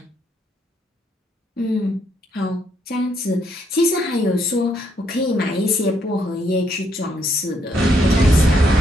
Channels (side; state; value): both; normal; correlation 0.73